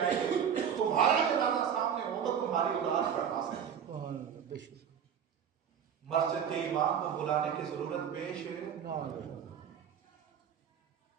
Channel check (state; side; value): quieter; left; 8.2 dB